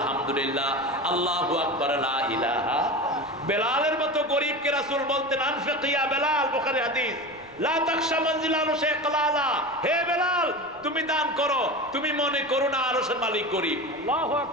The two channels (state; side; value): noise; left; rumble, 29 dB below the sound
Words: আল্লাহু আকবার, লা ইলাহা। বেলালের মতো গরীবকে রাসূল বলতেন, আনফিক ইয়া বেলাল, বুখারী হাদিস, লা তাখশা মানজিলানু শাইকালালা, হে বেলাল তুমি দান করো, তুমি মনে করো না আরশের মালিক গরীব। আল্লাহু